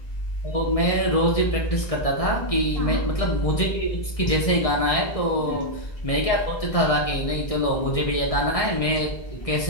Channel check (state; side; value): late; right; 1.6 ms